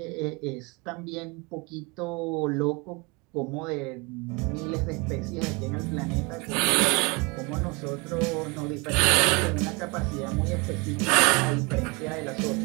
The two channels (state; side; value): quieter; left; 28.6 dB